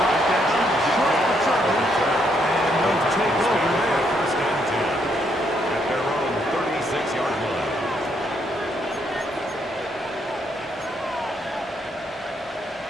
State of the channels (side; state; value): both; normal; correlation 0.74